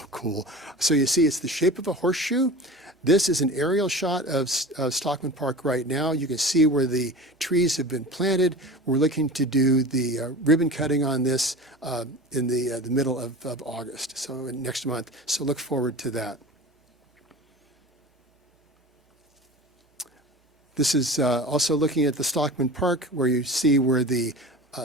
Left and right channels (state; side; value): normal; both; correlation 0.35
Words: cool. So you see, it's the shape of a horseshoe. This is an aerial shot of Stockman Park right now. You can see where the trees have been planted. We're looking to do the ribbon cutting on this in the middle of August, so next month. So look forward to that. This is also looking at the Stockman Park, where you see where the